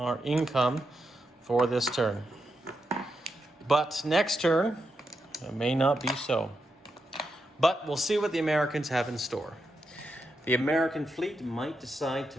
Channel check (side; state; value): both; normal; correlation 0.85